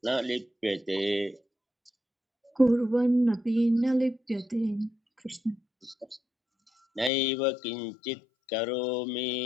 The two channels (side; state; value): right; drops out; at 7.1 s